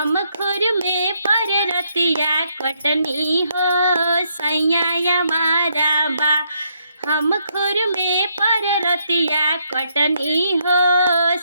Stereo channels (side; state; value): both; inverted; correlation -0.74